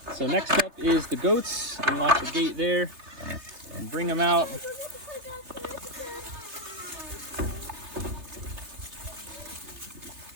So next up is the goats. Unlock the gate there and bring them out.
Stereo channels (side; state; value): left; late; 3.3 ms